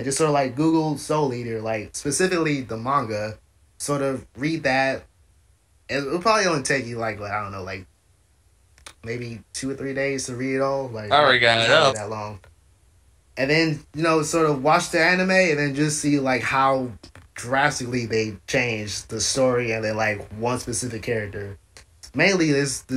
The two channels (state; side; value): identical; both; correlation 1.00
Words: sort of like Google Soul Eater, like specifically the manga, sort of read that. It'll probably only take you like I don't know, like maybe 2 or 3 days to read it all. Like I already got it up. That long. And then sort of watch the anime and then just see like how drastically they changed the story and then like one specific character. Mainly this